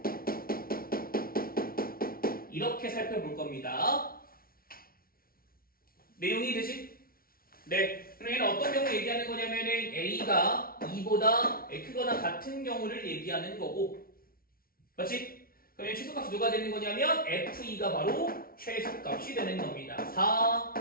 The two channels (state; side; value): late; right; 0.43 ms